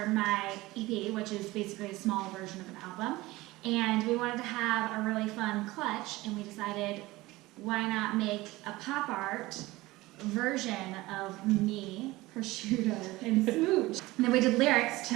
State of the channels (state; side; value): quieter; left; 19.5 dB